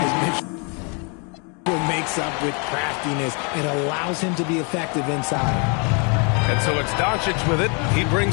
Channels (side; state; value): right; quieter; 35.1 dB